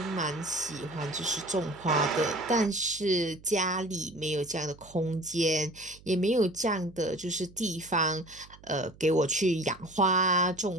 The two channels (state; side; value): noise; right; hum, 23 dB below the sound